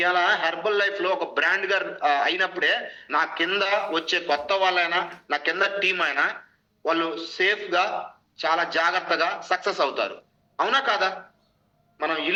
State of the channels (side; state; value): both; identical; correlation 1.00